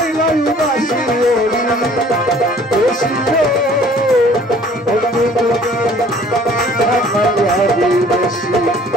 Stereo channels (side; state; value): both; normal; correlation 0.54